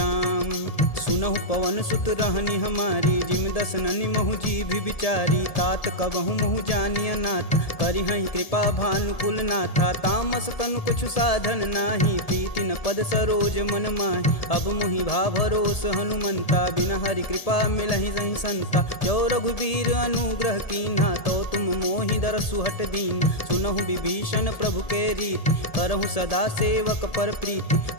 सुनहु पवन सुत रहनी हमारी जिम दसननि महु जीभ विचारी। तात कबहु महु जानिय नाथ करिहहि कृपा भानुकुल नाथा। तामस तनु कुछु साधन नाही प्रीति न पद सरोज मन माहि। अब मुहि भा भरोस हनुमंता बिना हरि कृपा मिलहि सही संता। जो रघुबीर अनुग्रह कीन्हा तो तुम मोहि दरसु हट दीन। सुनहु विभीषण प्रभु के रीत करहु सदा सेवक पर प्रीति।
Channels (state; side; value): late; right; 1.7 ms